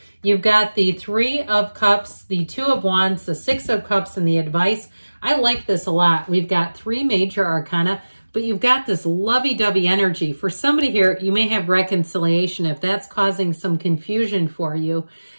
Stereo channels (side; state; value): both; inverted; correlation -1.00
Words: You've got the 3 of Cups, the 2 of Wands, the 6 of Cups, and the advice. I like this a lot. We've got 3 major arcana, but you've got this lovey-dovey energy. For somebody here, you may have reconciliation if that's causing some confusion for you.